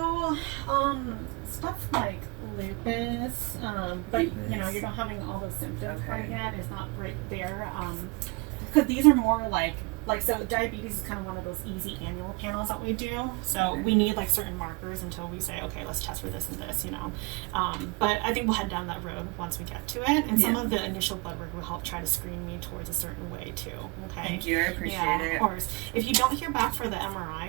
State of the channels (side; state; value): left; quieter; 27.3 dB